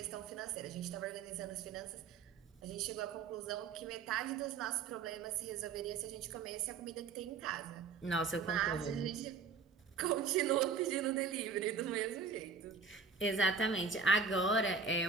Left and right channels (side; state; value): left; quieter; 5.3 dB